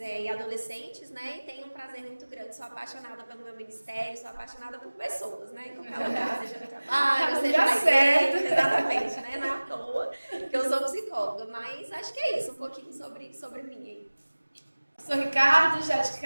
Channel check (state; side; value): inverted; both; correlation -1.00